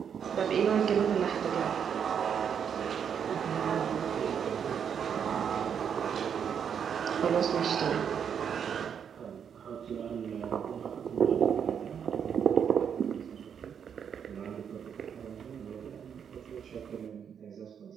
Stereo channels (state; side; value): quieter; left; 7.8 dB